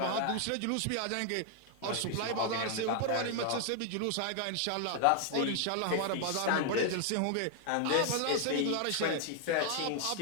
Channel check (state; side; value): different; both; correlation 0.00